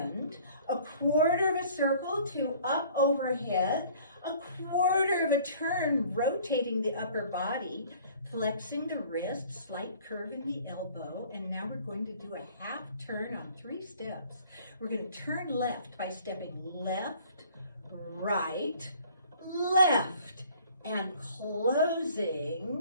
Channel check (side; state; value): both; inverted; correlation -0.53